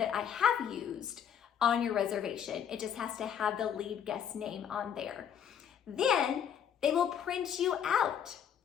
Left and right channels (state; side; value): quieter; right; 8.6 dB